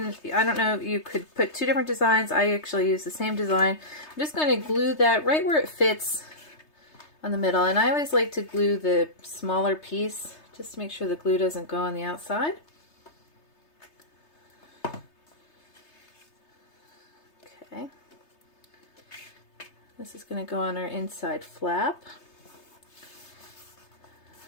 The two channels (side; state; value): right; late; 3.3 ms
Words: don't know, you could put two different designs. I actually use the same design. I'm just going to glue that right where it fits on the middle. And I always like to glue the smaller piece just to make sure the glue doesn't go on the outside. Okay. This is going to go on our inside flap.